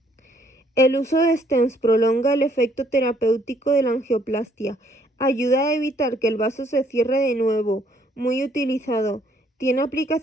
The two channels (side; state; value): both; normal; correlation 0.66